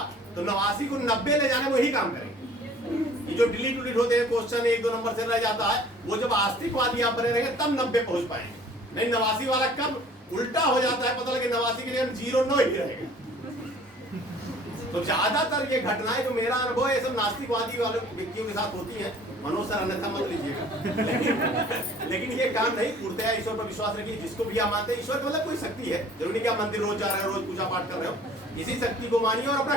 तो 89 को 90 ले जाने में वही काम करेंगे। कि जो डिलीट उलीट होते हैं क्वेश्चन 1-2 नंबर से रह जाता है, वो जब आस्तिकवादी आप बने रहेंगे तब 90 पहुंच पाएंगे। नहीं 89 वाला कब उल्टा हो जाता है, पता लगे 89 के लिए 0-9 ही रहेगा। तो ज्यादातर ये घटनाएं जो मेरा अनुभव है, ये सब नास्तिकवादी वाले व्यक्तियों के साथ होती हैं। मनोज सर अन्यथा मत लीजिएगा, लेकिन ये काम नहीं, पूर्णतः ईश्वर पर विश्वास रखिए। जिसको भी आप मानते हैं, ईश्वर मतलब कोई शक्ति है, जरूरी नहीं कि आप मंदिर रोज जा रहे हो, रोज पूजा पाठ कर रहे हो, इसी शक्ति को मानिए और अपना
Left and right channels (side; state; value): both; normal; correlation 0.51